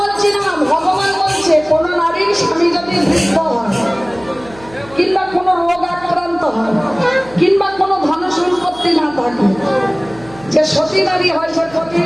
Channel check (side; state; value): right; noise; hum, 21 dB below the sound